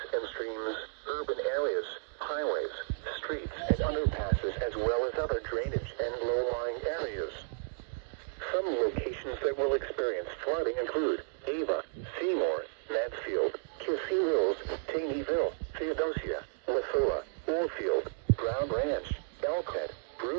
and streams, urban areas, highways, streets, and underpasses, as well as other drainage and low-lying areas. Some locations that will experience flooding include Ava, Seymour, Mansfield, Kissee Mills, Taneyville, Theodosia, Wasilla, Oldfield, Brown Ranch, Elkhead,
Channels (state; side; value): silent; left; digital silence